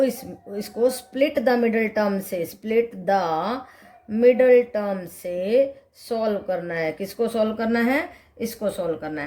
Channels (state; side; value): identical; both; correlation 1.00